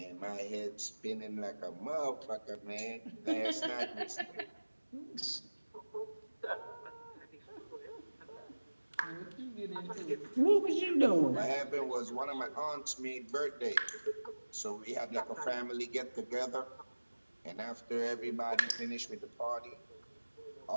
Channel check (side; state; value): both; inverted; correlation -1.00